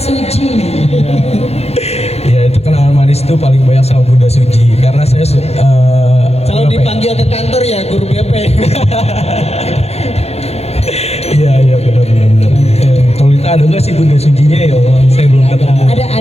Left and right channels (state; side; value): late; right; 0.30 ms